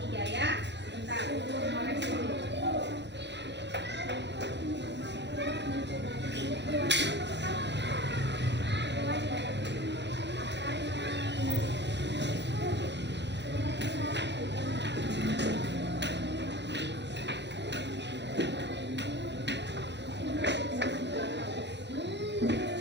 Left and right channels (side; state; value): left; late; 0.51 ms